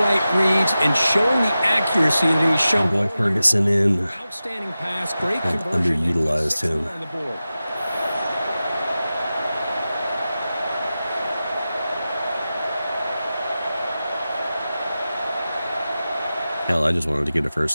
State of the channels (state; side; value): inverted; both; correlation -0.94